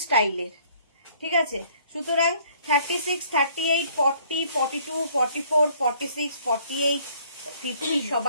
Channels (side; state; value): both; inverted; correlation -0.59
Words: স্টাইলের, ঠিক আছে। সুতরাং 36 38 40 42 44 46 48 50